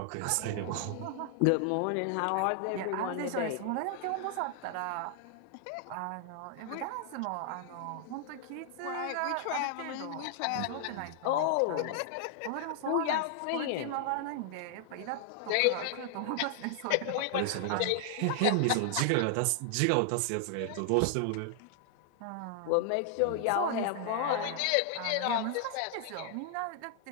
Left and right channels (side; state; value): both; different; correlation 0.00